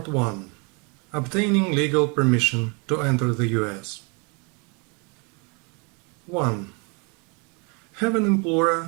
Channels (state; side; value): quieter; left; 32.4 dB